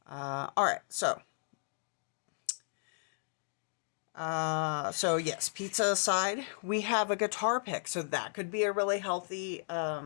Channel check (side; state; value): right; silent; digital silence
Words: All right, so yes, pizza aside, we have a guitar pick, so that could be a really healthy